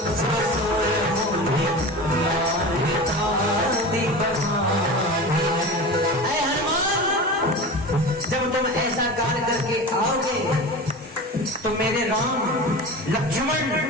जब तुम ऐसा कार्य करके आओगे तो मेरे राम, लक्ष्मण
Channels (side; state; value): both; normal; correlation 0.31